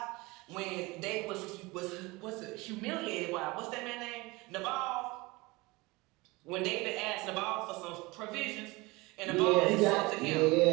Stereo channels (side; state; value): left; quieter; 23.3 dB